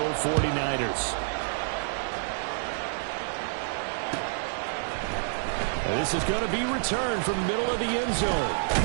49ers. This is going to be returned from the middle of the end zone.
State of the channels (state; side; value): silent; left; 59 dB below the other